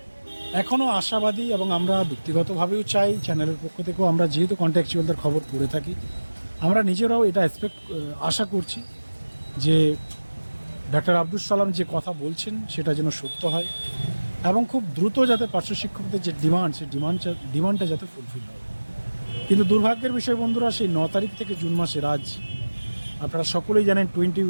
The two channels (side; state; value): both; inverted; correlation -1.00